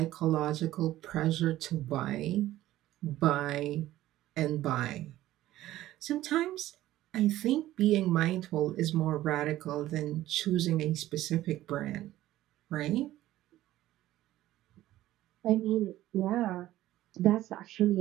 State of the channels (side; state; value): left; quieter; 14.8 dB